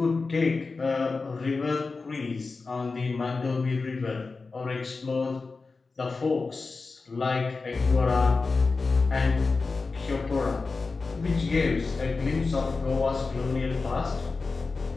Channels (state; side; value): quieter; right; 4.1 dB